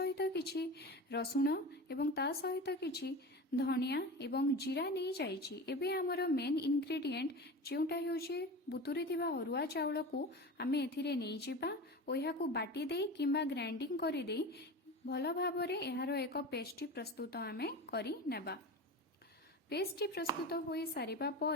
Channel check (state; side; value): normal; both; correlation 0.30